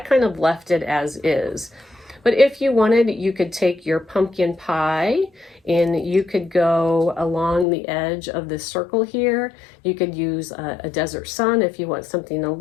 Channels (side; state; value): right; drops out; at 7.7 s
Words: of left it as is. But if you wanted, you could take your pumpkin pie and you could go along the edge of this circle here. You could use a desert sun if you want something a